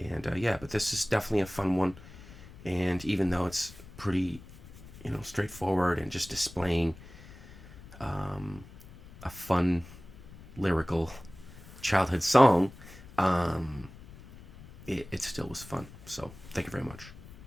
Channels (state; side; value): noise; left; rumble, 18 dB below the sound